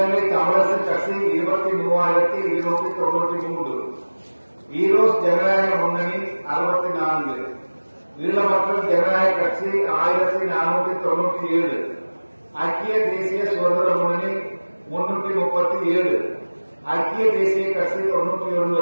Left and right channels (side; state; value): both; inverted; correlation -1.00